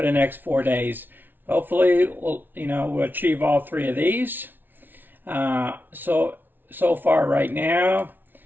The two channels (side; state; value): left; late; 0.092 ms